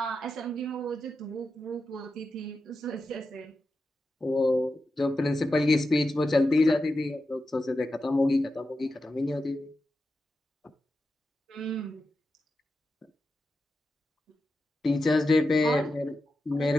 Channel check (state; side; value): normal; both; correlation 0.90